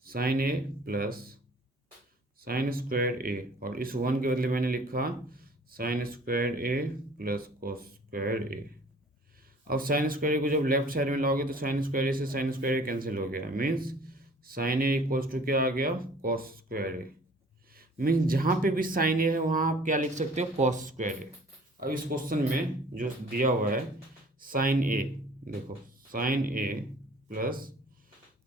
sine a plus sine square a, और इस 1 के बदले मैंने लिखा sine square a plus cos square a. अब साइन स्क्वायर ए को जब लेफ्ट साइड में लाओगे तो साइन स्क्वायर ए से साइन स्क्वायर ए कैंसिल हो गया, means sine a equals to क्या आ गया, कॉस स्क्वायर ए। मीन्स जहाँ पे भी साइन ए है वहाँ आप क्या लिख सकते हो, कॉस स्क्वायर ए। अब इस क्वेश्चन में जो दिया हुआ है साइन ए, देखो sine a plus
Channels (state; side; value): normal; both; correlation 0.51